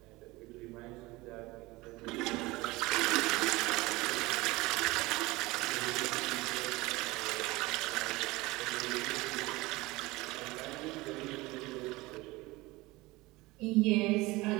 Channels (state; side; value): quieter; left; 21.2 dB